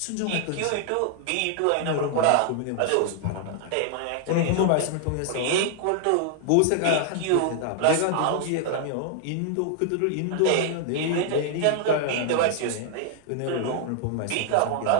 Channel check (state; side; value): different; both; correlation 0.00